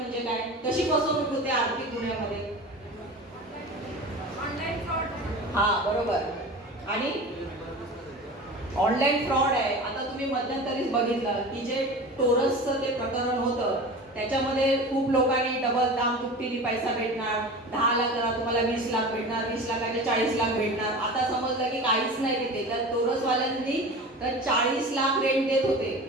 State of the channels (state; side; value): normal; both; correlation 0.34